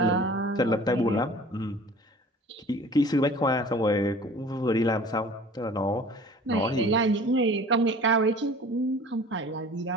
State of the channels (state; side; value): normal; both; correlation 0.45